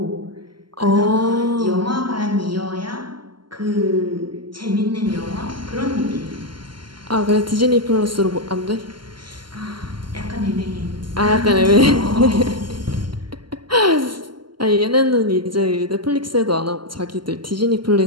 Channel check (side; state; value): left; late; 0.72 ms